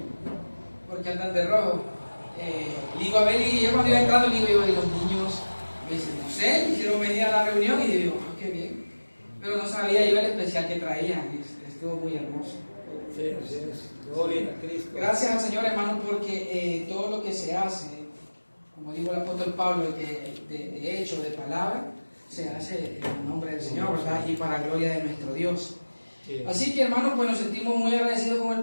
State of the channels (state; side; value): inverted; both; correlation -1.00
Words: ¿Por qué andan de rojo? Digo, a ver, y yo cuando iba entrando, digo, y los niños, me dicen, no sé, hicieron venir a la reunión y digo, qué bien. Pero no sabía yo el especial que traían, y estuvo muy hermoso. Sí, así es. Gloria a Cristo. Gracias al Señor, hermano, porque todo lo que se hace, como dijo el apóstol Pablo, de hecho, de palabra, se hace en el nombre del Señor, ¿verdad? Y para gloria de nuestro Dios. Sí. Así que, hermanos, pues nos sentimos muy agradecidos con